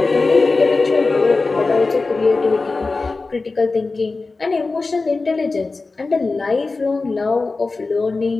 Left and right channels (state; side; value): quieter; right; 3.8 dB